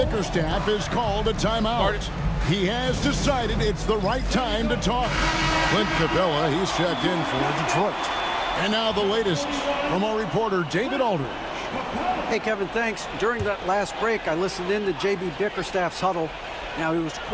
is called a timeout. He has decided it's the right time to talk. Clint Capella, he's checked in for Detroit. And now the latest from our reporter, David Aldridge. Hey, Kevin, thanks. During that last break, I listened in to J.B. Bickerstaff's huddle. Now, he was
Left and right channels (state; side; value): identical; both; correlation 1.00